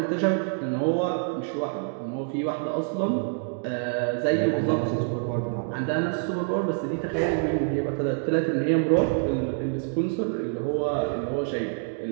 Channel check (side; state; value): left; silent; digital silence